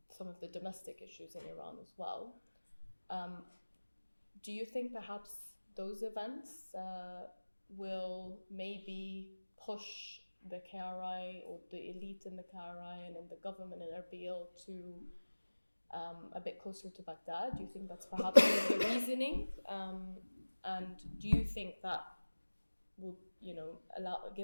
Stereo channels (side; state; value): both; inverted; correlation -1.00